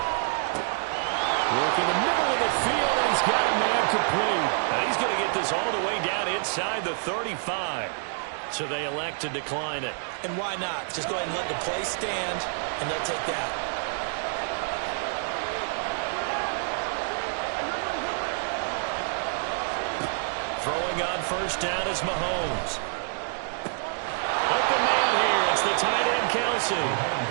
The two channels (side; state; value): left; silent; digital silence